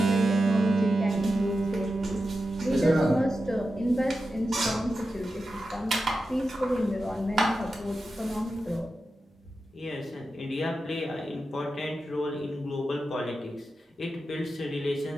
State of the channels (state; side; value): normal; both; correlation 0.91